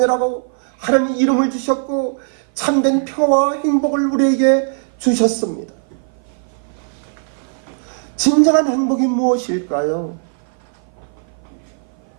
하나님의 이름을 주셨고 참된 평화와 행복을 우리에게 주셨습니다. 진정한 행복이 무엇일까요?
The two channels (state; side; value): silent; left; 55 dB below the other